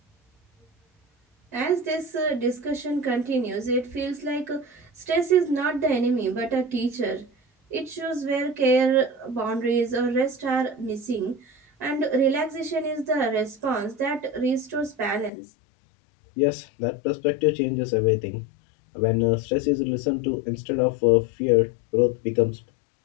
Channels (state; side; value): drops out; right; at 15.3 s